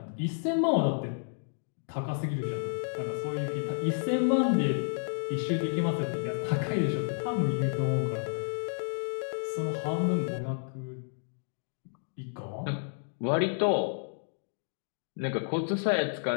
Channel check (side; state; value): right; silent; digital silence